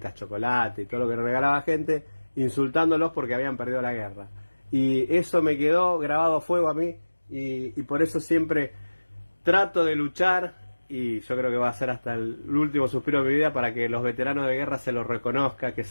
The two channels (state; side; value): inverted; both; correlation -1.00